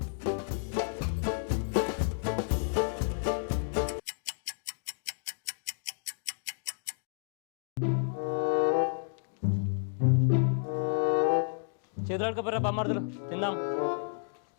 చేతులు అడుకోపోరా బొమ్మర్దులు, తిందాం.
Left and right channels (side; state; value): right; silent; digital silence